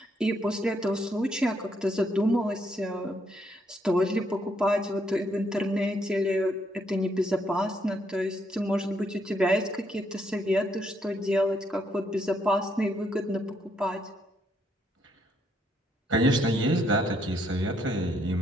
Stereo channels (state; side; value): normal; both; correlation 0.73